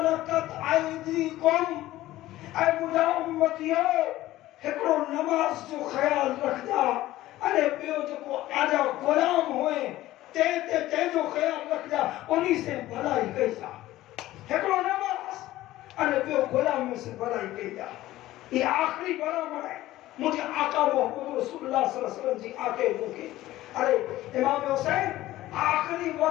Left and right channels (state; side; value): quieter; right; 15.8 dB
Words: عیدیکم اے مجھا امتیو ہکڑو نماز جو خیال رکھ جا ارے پیو جو کو آجا غلام ہوئے تے جو خیال رکھ جا انہی سے بھلائی کہی جا ہکڑو نماز ارے پیو غلام میں سے بھلائی کہی جا یہ آخری برابر ہے مجھے آقا محمد رسول اللہ صلی اللہ علیہ وسلم جی آکے بھوکے ارے امام حسین آخری